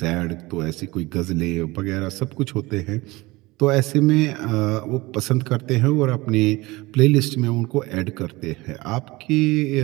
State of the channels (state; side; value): quieter; left; 21.5 dB